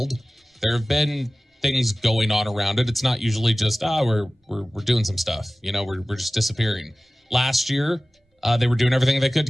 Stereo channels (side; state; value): both; normal; correlation 0.97